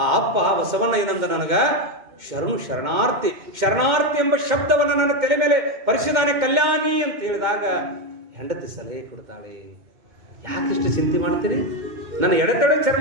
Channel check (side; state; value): left; late; 2.2 ms